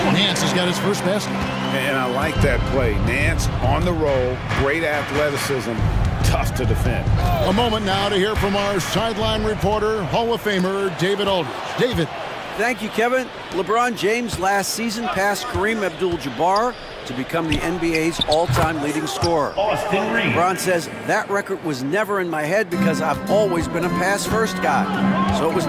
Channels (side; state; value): both; identical; correlation 1.00